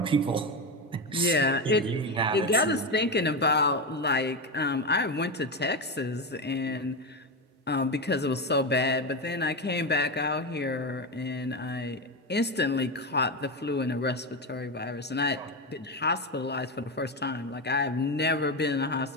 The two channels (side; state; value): both; normal; correlation 0.14